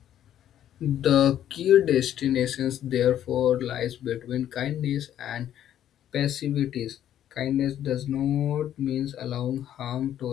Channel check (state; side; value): quieter; right; 11.1 dB